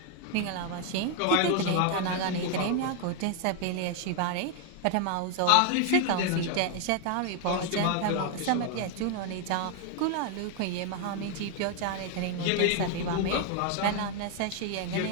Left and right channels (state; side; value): different; both; correlation 0.00